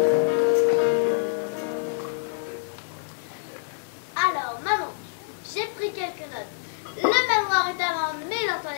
Alors, maman, j'ai pris quelques notes. Le manoir est à vendre, mais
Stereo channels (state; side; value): silent; right; digital silence